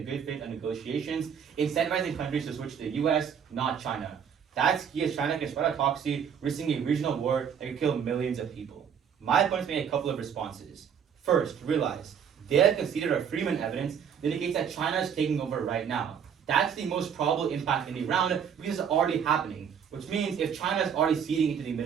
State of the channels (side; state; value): left; quieter; 7.7 dB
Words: good faith on negotiations, incentivizing countries to switch to the U.S., not China. That's key as China can spread autocracy, risking a regional war that could kill millions of people. My opponents made a couple of responses. First, realize, they have conceded our Freeman evidence that indicates that China is taking over right now. That's the most probable impact in the round because it's already happening, which means if China is already ceding into the